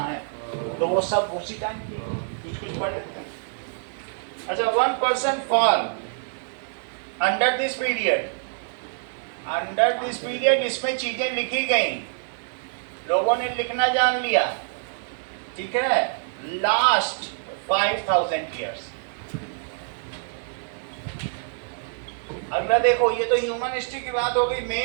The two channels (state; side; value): silent; left; 61 dB below the other